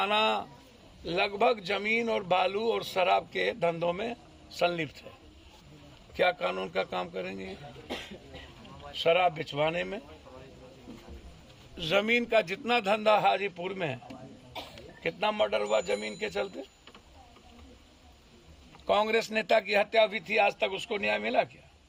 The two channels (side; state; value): both; identical; correlation 1.00